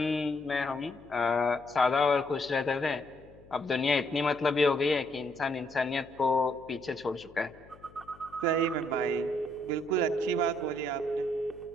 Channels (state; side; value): noise; left; hum, 24 dB below the sound